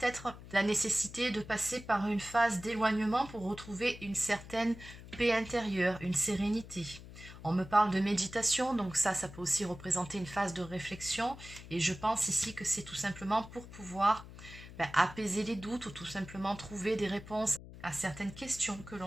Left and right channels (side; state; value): left; noise; hum, 15 dB below the sound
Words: la nécessité de passer par une phase d'éloignement pour retrouver une certaine paix intérieure, une sérénité. On me parle de méditation, donc ça peut aussi représenter une phase de réflexion. Et je pense ici que c'est tout simplement pour pouvoir apaiser les doutes ou tout simplement trouver des réponses à certaines questions que